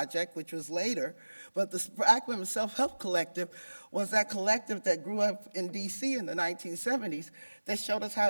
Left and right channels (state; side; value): inverted; both; correlation -1.00